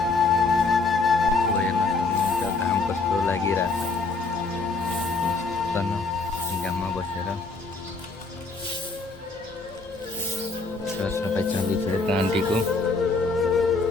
हेर्न सक्नुहुन्छ घाम कस्तो लागिरहेछ। घाममा बसेर सरसफाइ चल्दैछ यता आन्टीको।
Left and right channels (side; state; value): right; quieter; 3.9 dB